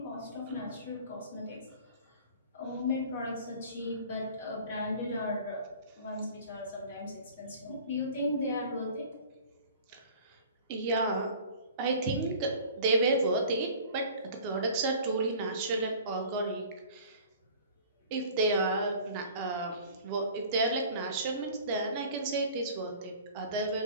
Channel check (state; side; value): inverted; both; correlation -0.45